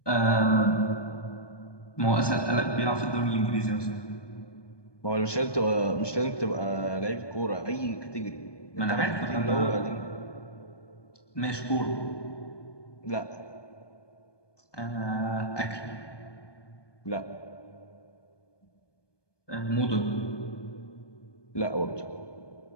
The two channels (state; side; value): late; right; 1.2 ms